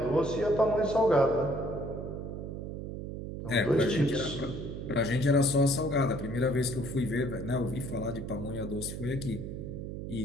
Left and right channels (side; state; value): right; noise; hum, 7 dB below the sound